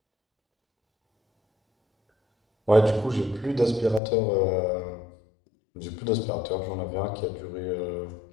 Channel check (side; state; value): right; drops out; at 4.0 s